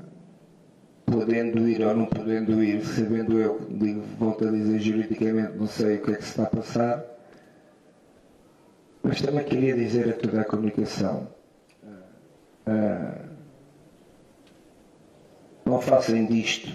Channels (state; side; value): identical; both; correlation 1.00